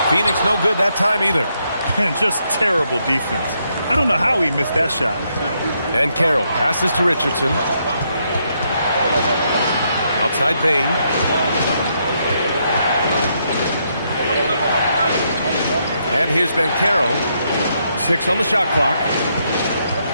Phoenix no good that time either. And just terrible defense. I don't know how he missed that shot. And Carroll passes to Richardson. Outside Bain. And here's Banchero. 6 on the shot clock.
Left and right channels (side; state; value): both; inverted; correlation -0.77